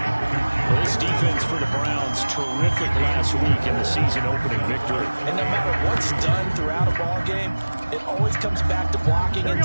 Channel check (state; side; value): inverted; both; correlation -1.00